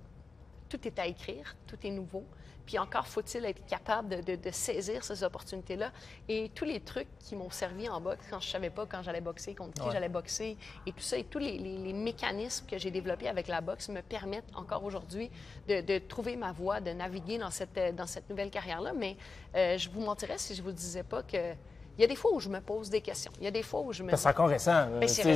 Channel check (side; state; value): right; quieter; 4.2 dB